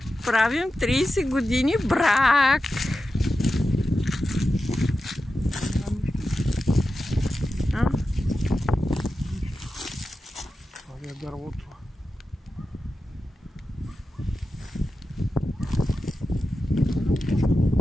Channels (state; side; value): normal; both; correlation 0.91